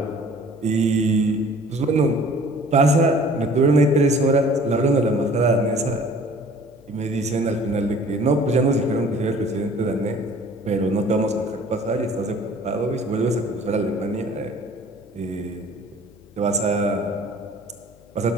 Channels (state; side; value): noise; left; hum, 27 dB below the sound